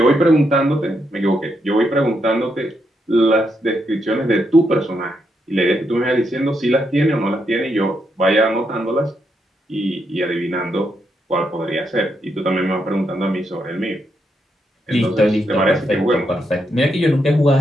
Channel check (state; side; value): normal; both; correlation 0.80